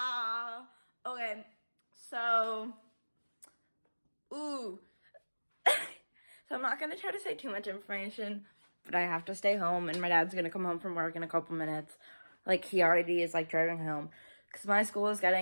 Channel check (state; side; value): inverted; both; correlation -1.00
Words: Okay, so, so I'm not gonna try to say too much information, but I have to stay home, and my dad's gonna come home from work in a couple minutes. Like, he already is, like, driving home, because my school is